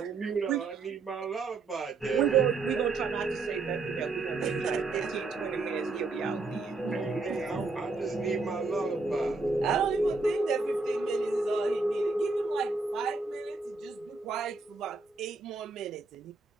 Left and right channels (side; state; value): left; quieter; 3.8 dB